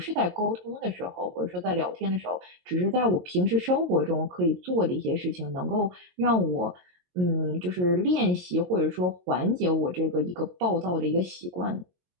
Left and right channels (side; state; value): left; late; 22 ms